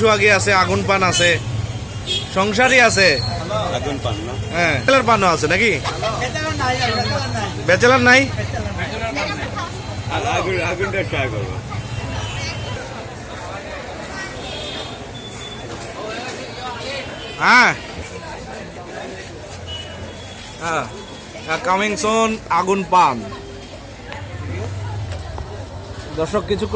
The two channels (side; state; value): both; identical; correlation 1.00